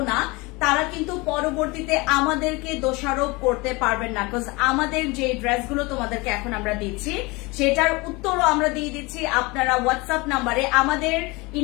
না তারা কিন্তু পরবর্তীতে আমাদেরকে দোষারোপ করতে পারবেন না, বিকজ আমাদের যে ড্রেসগুলো তোমাদেরকে এখন আমরা দিচ্ছি সেটার উত্তরও আমরা দিয়ে দিচ্ছি আপনারা হোয়াটসঅ্যাপ নাম্বারে। আমাদের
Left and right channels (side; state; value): right; quieter; 24.9 dB